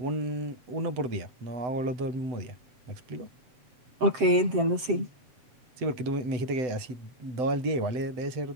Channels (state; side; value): late; left; 7.6 ms